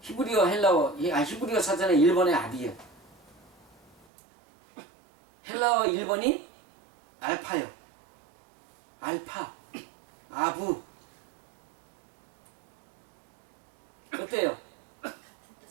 히브리어 헬라어, 히브리어 사전에 1번에 아비예요. 헬라어 1번이 알파요. 알파, 아부. 어때요?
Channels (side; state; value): left; drops out; at 4.0 s